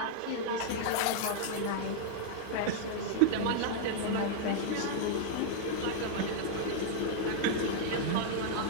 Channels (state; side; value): different; both; correlation -0.01